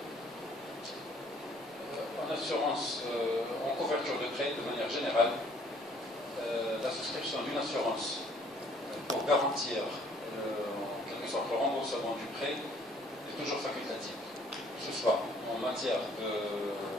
en assurance, en couverture de prêt, de manière générale, la souscription d'une assurance pour garantir en quelque sorte le remboursement du prêt est toujours facultative, que ce soit en matière de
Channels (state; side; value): normal; both; correlation 0.60